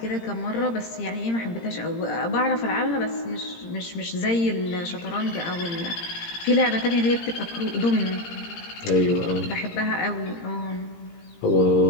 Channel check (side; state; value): right; late; 17 ms